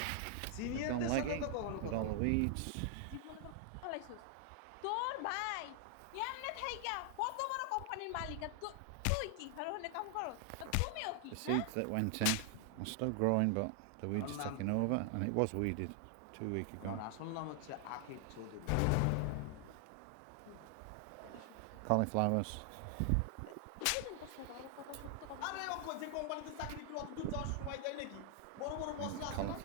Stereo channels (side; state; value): both; different; correlation 0.00